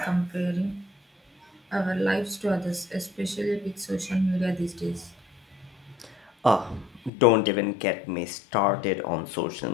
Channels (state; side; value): drops out; right; at 7.1 s